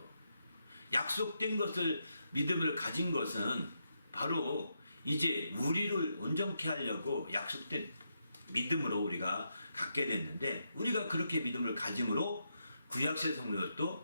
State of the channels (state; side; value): inverted; both; correlation -0.82